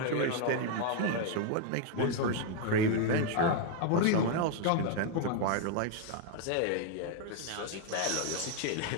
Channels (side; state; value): both; different; correlation 0.01